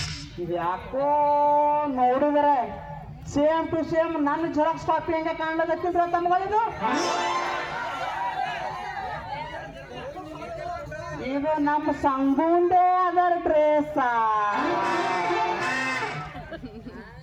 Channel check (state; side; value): identical; both; correlation 1.00